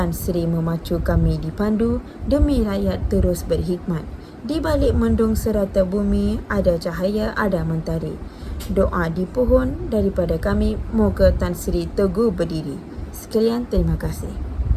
Sri memacu kami dipandu, demi rakyat terus berhikmat. Di balik mendung serata bumi, ada cahaya, ada mentari. Doa di pohon daripada kami, moga Tan Sri teguh berdiri. Sekalian, terima kasih.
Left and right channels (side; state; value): both; identical; correlation 1.00